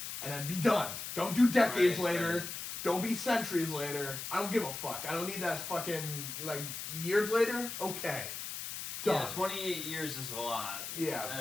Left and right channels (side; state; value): left; noise; hiss, 7 dB below the sound